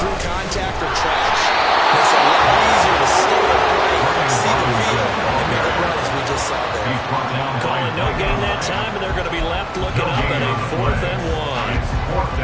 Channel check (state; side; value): identical; both; correlation 1.00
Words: contact or trash, it's a lot easier to stay upright, see the field, and make a run as we just saw there. Calling no gain that time, and they're going to be left looking up at a 4th and 1.